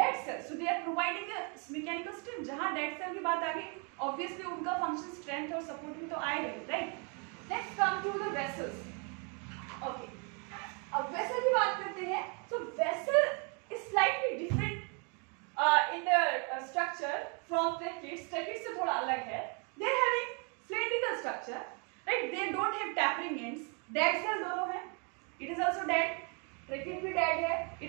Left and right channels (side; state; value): left; quieter; 36.0 dB